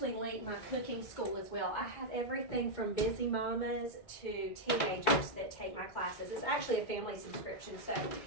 link my cooking school as well. I have everything from busy mamas to teenagers that take my classes. It's actually a family subscription, so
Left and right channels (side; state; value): right; late; 2.3 ms